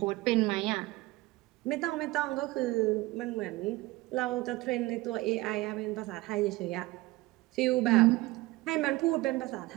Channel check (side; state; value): left; quieter; 20.0 dB